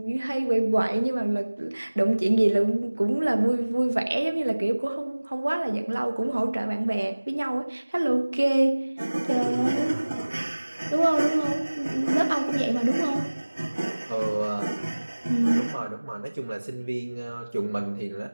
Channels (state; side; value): inverted; both; correlation -1.00